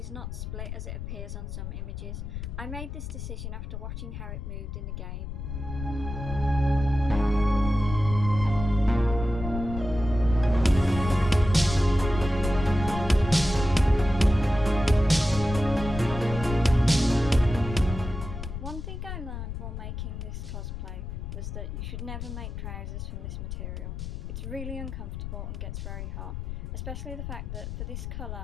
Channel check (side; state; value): left; noise; rumble, 7 dB below the sound